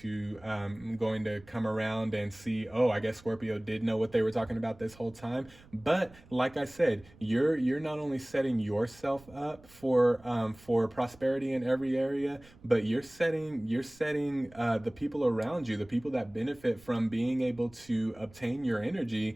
come around and see, oh, I guess Scorpio did know what they were talking about this whole time. But like I said, you're not only setting yourself up for prosperity in every area, but you're setting the people around you, the people that benefit from being able to obtain your energy,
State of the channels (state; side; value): noise; right; rumble, 24 dB below the sound